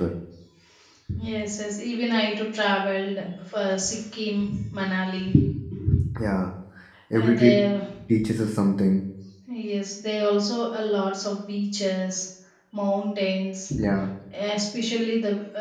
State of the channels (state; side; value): identical; both; correlation 1.00